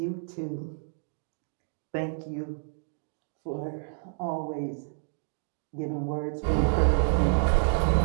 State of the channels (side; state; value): left; silent; digital silence